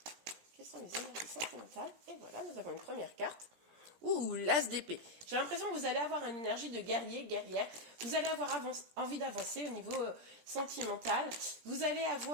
Quelles sont les énergies sentimentales? Et voilà, nous avons une première carte. Ouh, l'as d'épée. J'ai l'impression que vous allez avoir une énergie de guerrier, guerrière. Vous allez avoir envie d'avancer au niveau sentimental. Vous allez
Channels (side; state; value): left; late; 17 ms